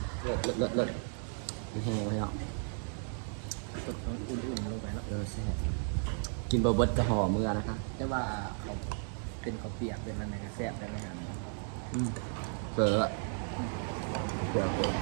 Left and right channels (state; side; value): silent; left; 55 dB below the other